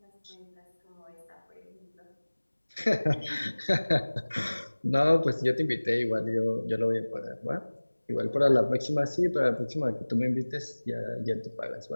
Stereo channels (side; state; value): both; inverted; correlation -1.00